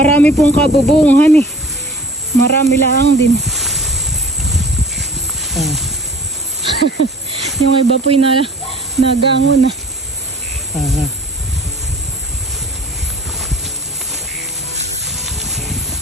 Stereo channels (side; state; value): both; normal; correlation 0.46